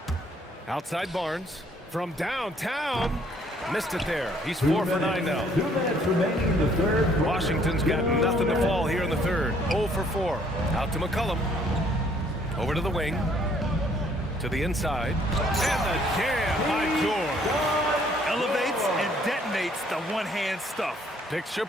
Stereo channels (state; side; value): normal; both; correlation 0.63